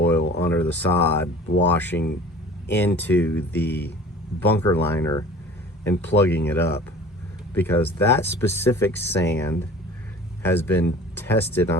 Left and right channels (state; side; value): normal; both; correlation 0.44